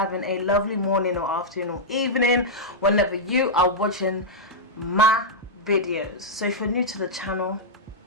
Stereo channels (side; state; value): both; normal; correlation -0.08